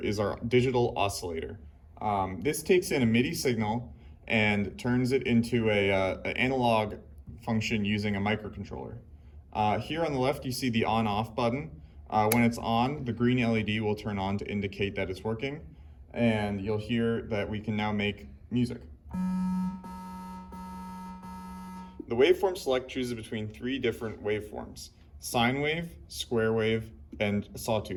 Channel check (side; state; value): both; identical; correlation 1.00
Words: is our digital oscillator. This takes in a MIDI signal and turns it into an analog function using a microcontroller. Here on the left, you see the on-off button. When it's on, the green LED will turn on to indicate that it's working, and you'll hear that we can now make music. The waveform select chooses between 3 different waveforms: sine wave, square wave, and